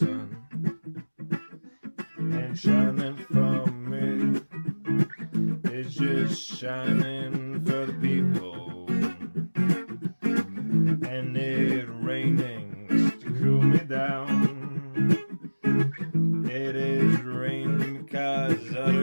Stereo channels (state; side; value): inverted; both; correlation -1.00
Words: ain't shining for me. It's just shining for the people. And it raining to cool me down. It is raining because